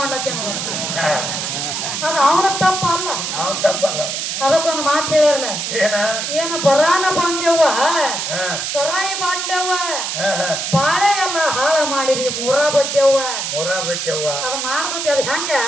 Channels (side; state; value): right; noise; hiss, 3 dB below the sound